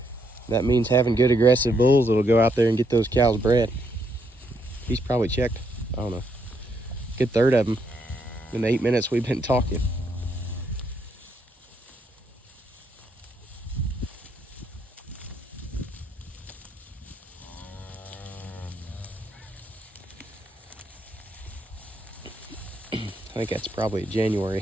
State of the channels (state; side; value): normal; both; correlation 0.75